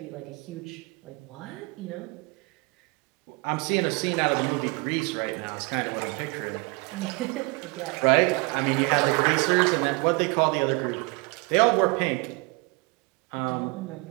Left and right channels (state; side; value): quieter; left; 27.4 dB